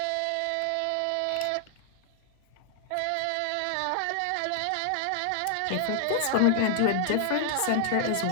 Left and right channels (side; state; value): both; different; correlation 0.00